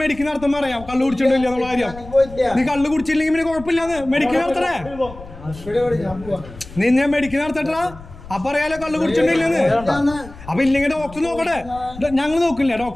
മെഡിക്കൽ നടത്തുമ്പോ അറിയാം കള്ളു കുടിച്ചിട്ടില്ല എന്നുള്ള കാര്യം. നീ കള്ളു കുടിച്ചില്ലെങ്കിൽ പിന്നെ കുഴപ്പമില്ലാന്ന് മെഡിക്കൽ നടത്തണേ. നിന്നെ മെഡിക്കൽ നടത്തട്ടാ അപ്പൊ അറിയാലോ കള്ളു കുടിച്ചിട്ടില്ലെന്ന്. അപ്പൊ ഇല്ലെങ്കിൽ ഡോക്ടർ നോക്കട്ടെ. ഞങ്ങൾ നോക്കില്ല,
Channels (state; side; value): noise; left; rumble, 17 dB below the sound